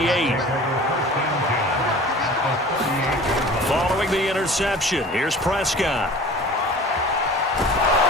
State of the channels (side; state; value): both; normal; correlation 0.42